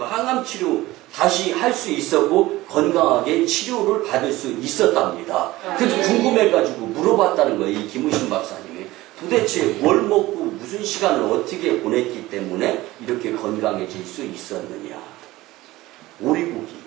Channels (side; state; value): left; quieter; 18.1 dB